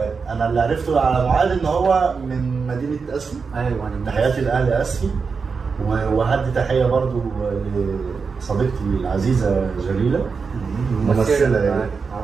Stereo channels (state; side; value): quieter; left; 5.2 dB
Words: انا اللي عرفته على معاذ ان هو من مدينه اسفي. ايوه، تحياتي لاهل اسفي، وهدي تحيه برضو لصديقتي العزيزه جليله، ممثله يعني،